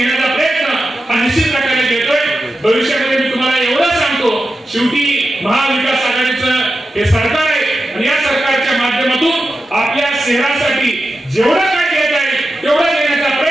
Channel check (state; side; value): normal; both; correlation 0.91